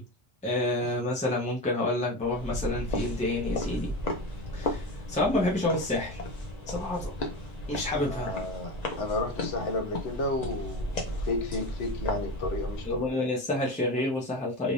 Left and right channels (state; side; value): normal; both; correlation 0.24